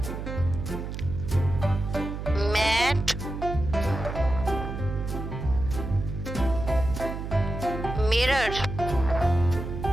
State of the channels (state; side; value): noise; right; hum, 6 dB below the sound